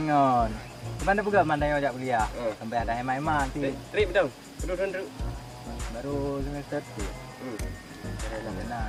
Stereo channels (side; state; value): both; identical; correlation 1.00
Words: ngon. Di mana bukan mandai ajak kuliah. Sampai ada hemat-hemat ti. Trip betul. Duduk. Baru semester tu.